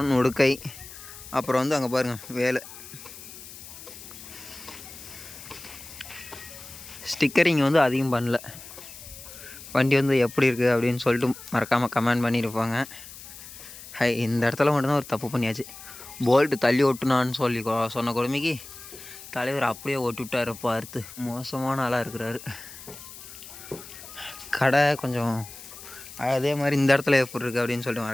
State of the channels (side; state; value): left; noise; hiss, 15 dB below the sound